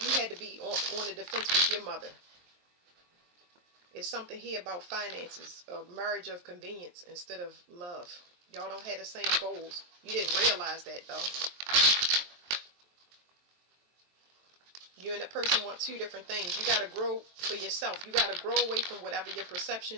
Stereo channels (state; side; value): late; left; 23 ms